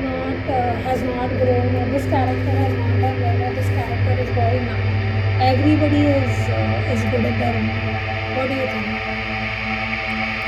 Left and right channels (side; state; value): both; identical; correlation 1.00